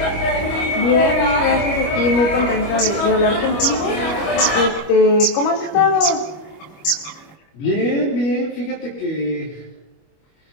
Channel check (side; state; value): right; late; 25 ms